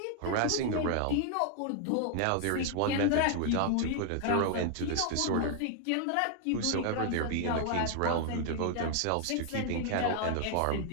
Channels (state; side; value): different; both; correlation 0.00